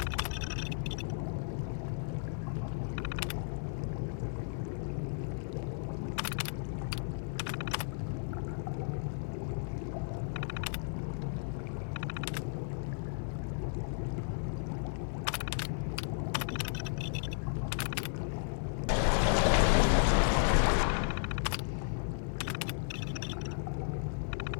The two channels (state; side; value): silent; right; 55 dB below the other